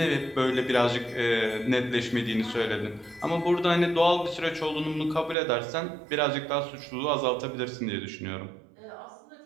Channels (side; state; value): left; drops out; at 5.4 s